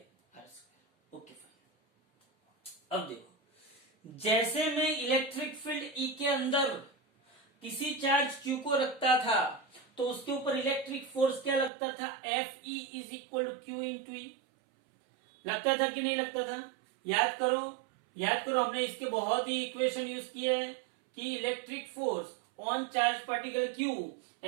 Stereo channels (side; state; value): left; drops out; at 11.7 s